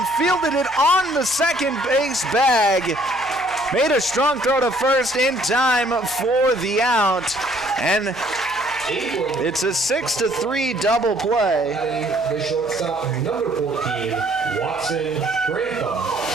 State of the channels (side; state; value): right; noise; hum, 25 dB below the sound